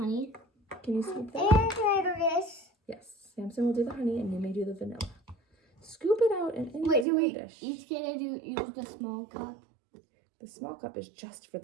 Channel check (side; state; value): left; drops out; at 7.1 s